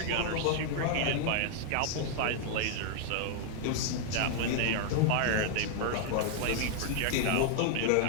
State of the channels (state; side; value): different; both; correlation 0.00